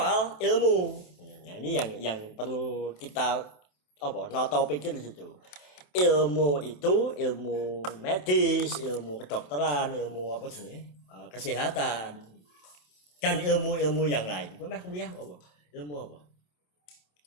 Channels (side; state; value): right; late; 27 ms